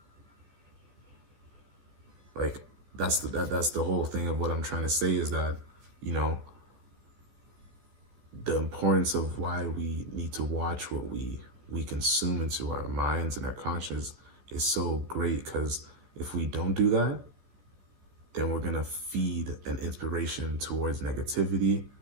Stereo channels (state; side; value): late; left; 14 ms